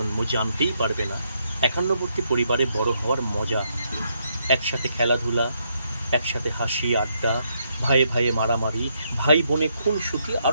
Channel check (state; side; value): inverted; both; correlation -0.76